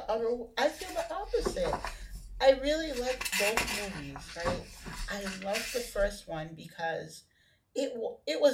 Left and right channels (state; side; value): identical; both; correlation 1.00